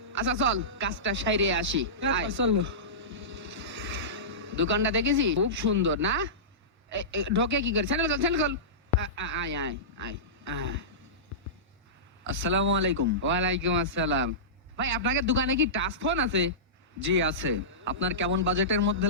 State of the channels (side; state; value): both; normal; correlation -0.19